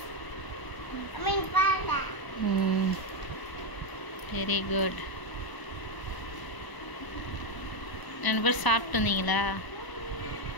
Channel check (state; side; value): late; right; 1.0 ms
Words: Very good. 2 பேர் சாப்பிட்டு வந்தீங்களா?